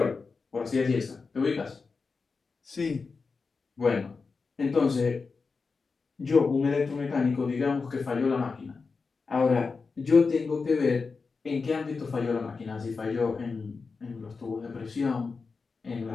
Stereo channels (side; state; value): right; quieter; 4.6 dB